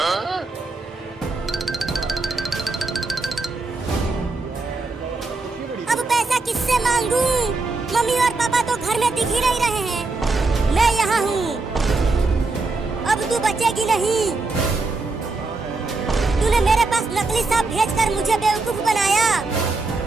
अब पैसा किससे मांगू? मम्मी और पापा तो घर में दिख ही नहीं रहे हैं। मैं यहाँ हूँ, अब तू बचेगी नहीं। तूने मेरे पास नकली सांप भेजकर मुझे बेवकूफ बनाया।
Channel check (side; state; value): left; quieter; 3.6 dB